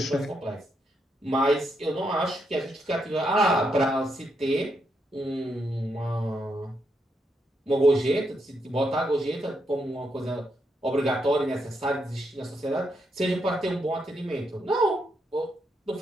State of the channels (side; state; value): both; normal; correlation 0.80